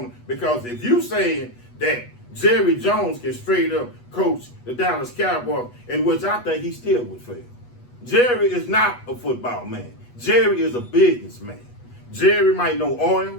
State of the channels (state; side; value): late; right; 8.2 ms